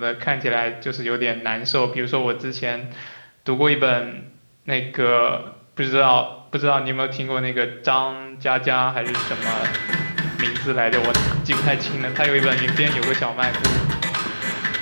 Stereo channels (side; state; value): both; inverted; correlation -1.00